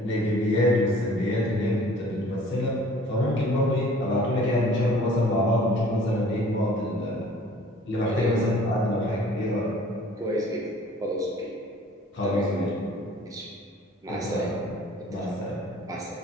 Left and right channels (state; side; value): normal; both; correlation 0.51